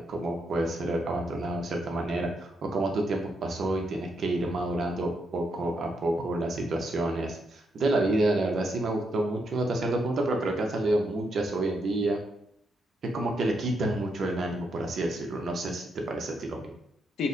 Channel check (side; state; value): both; normal; correlation 0.80